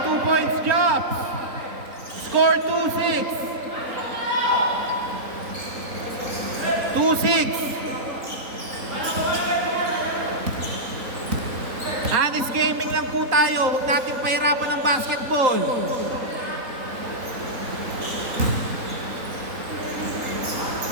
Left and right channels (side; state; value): left; late; 3.9 ms